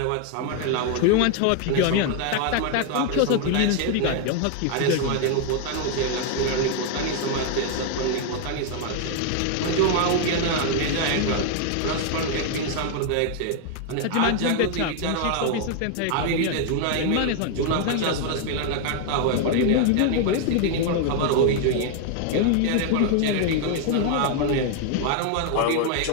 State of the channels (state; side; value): different; both; correlation 0.01